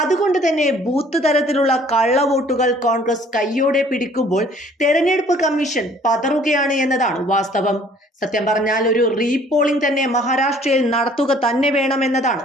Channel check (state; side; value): normal; both; correlation 0.56